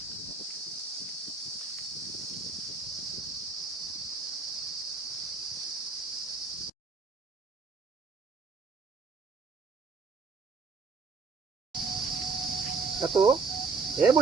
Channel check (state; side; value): quieter; left; 4.5 dB